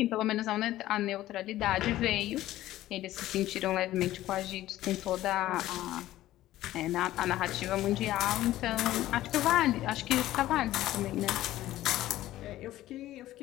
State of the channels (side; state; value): right; quieter; 14.8 dB